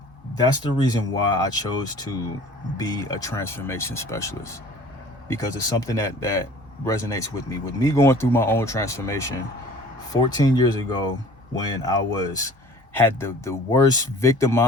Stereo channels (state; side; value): normal; both; correlation 0.48